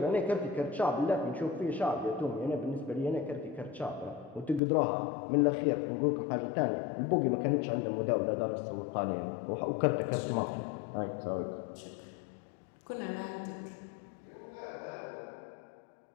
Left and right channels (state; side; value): drops out; right; at 4.6 s